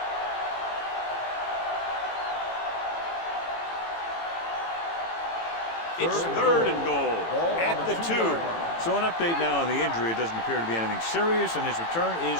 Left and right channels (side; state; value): right; late; 18 ms